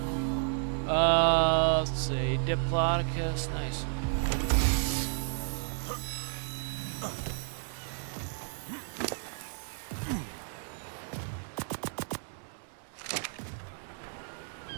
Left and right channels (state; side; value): silent; left; 56 dB below the other